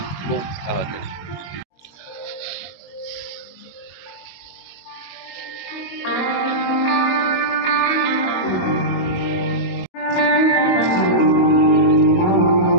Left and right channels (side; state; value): right; late; 22 ms